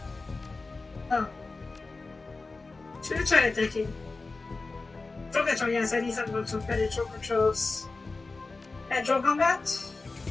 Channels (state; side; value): quieter; right; 3.7 dB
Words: Oh. Should have tried decking. Drone control, yes, I need some better drone controls. And drone combat?